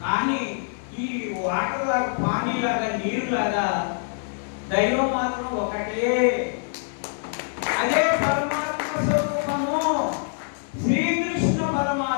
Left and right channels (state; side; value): silent; right; 62 dB below the other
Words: కానీ ఈ వాటర్ లాగా, పానీలాగా, నీరులాగా దైవం మాత్రం ఒకటే. అదే పరమాత్మ స్వరూపము, శ్రీకృష్ణ